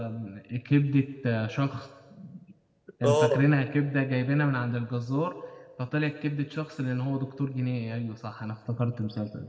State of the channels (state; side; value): identical; both; correlation 1.00